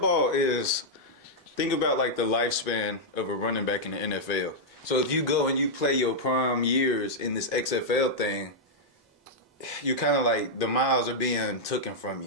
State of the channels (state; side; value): normal; both; correlation -0.06